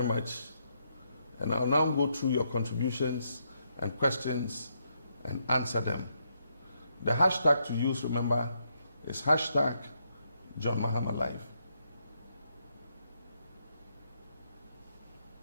much. And I'll now go through your contributions and questions and answer them. The hashtag to use, remember, is hashtag John Mahama Live.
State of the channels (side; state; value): both; inverted; correlation -0.78